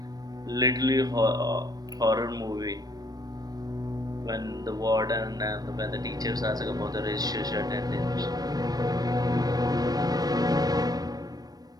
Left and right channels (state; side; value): late; left; 0.19 ms